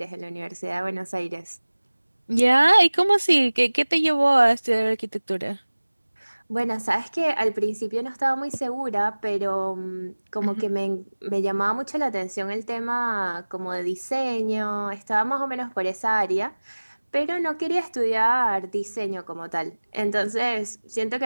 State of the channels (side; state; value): both; inverted; correlation -1.00